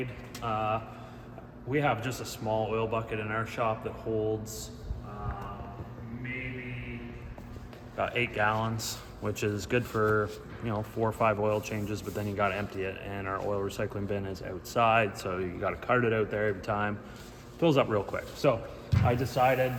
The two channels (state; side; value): identical; both; correlation 1.00